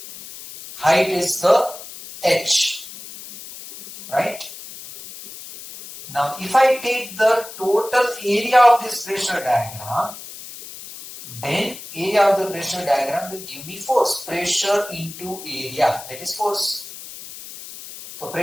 Height is the H. Right? Now, if I take the total area of this pressure diagram, then area of the pressure diagram will give me force. Pressure into area, that is force. So,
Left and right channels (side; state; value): left; noise; hiss, 14 dB below the sound